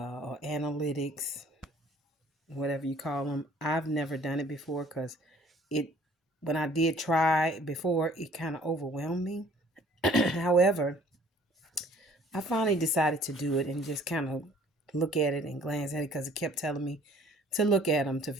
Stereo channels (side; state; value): both; normal; correlation 0.55